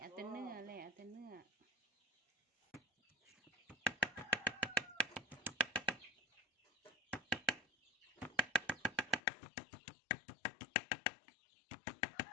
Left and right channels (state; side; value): drops out; right; at 9.2 s